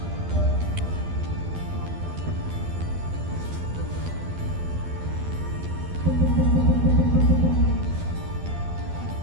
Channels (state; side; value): late; left; 12 ms